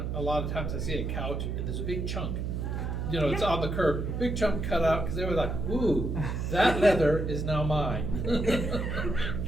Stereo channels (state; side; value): noise; right; hum, 2 dB below the sound